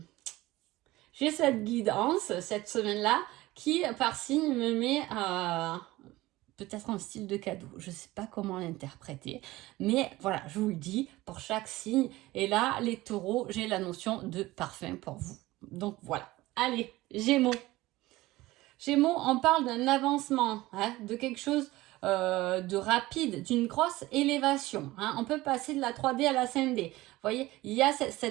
cette guidance, cette semaine-là, qui, par signe, me met peut-être un style de cadeau. Je ne sais pas comment l'interpréter. Mais voilà, je vous le dis, pour chaque signe. Et là, les taureaux, j'ai la notion de parfum pour vous. Donc voilà. Allez, Gémeaux. Gémeaux, on parle d'un avancement, hein, de quelque chose de rapide, d'une grosse élévation. Hein. On peut passer de la 3D à la 5D. Vous voyez, il y a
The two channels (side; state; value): left; quieter; 18.5 dB